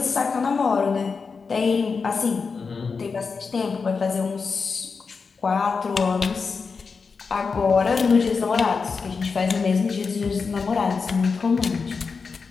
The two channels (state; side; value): quieter; right; 5.0 dB